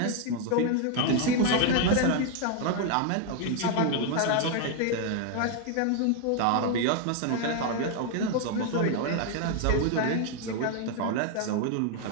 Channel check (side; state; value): both; different; correlation 0.01